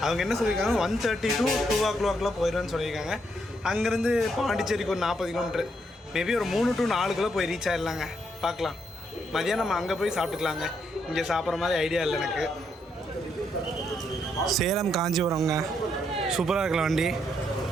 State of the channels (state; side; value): normal; both; correlation 0.76